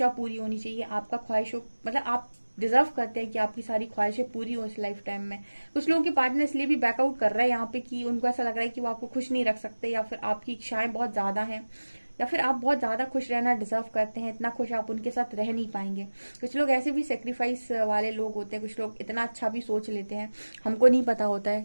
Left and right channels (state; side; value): inverted; both; correlation -1.00